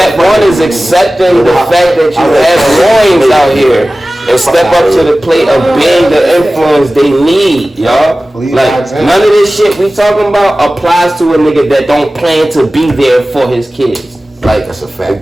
one is accepting the fact that you have boys out here. And step up to the plate of being the influence they need, y'all. Like, none of this shit we talking about applies to a nigga that don't plan to be there for his kids. Like, that's a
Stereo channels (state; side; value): normal; both; correlation 0.97